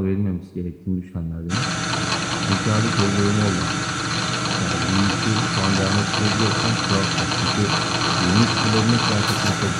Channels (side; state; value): both; identical; correlation 1.00